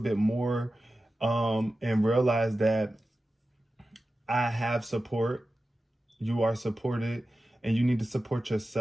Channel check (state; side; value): normal; both; correlation 0.94